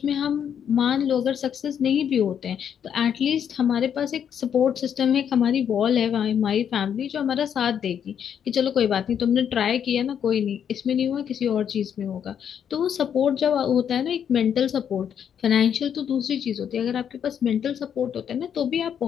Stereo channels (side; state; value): right; quieter; 8.5 dB